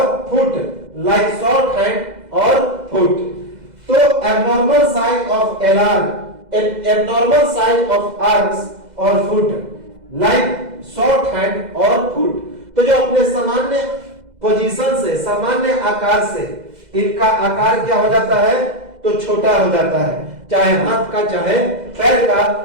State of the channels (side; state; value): left; late; 2.0 ms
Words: फुट लाइक शॉर्ट हैंड और फुट। तो abnormal size of abnormal size of arms और फुट लाइक शॉर्ट हैंड और फुट। तो जो अपने सामान्य पोजीशन से, सामान्य आकार से इनका आकार क्या हो जाता है? तो छोटा हो जाता है, चाहे हाथ का, चाहे पैर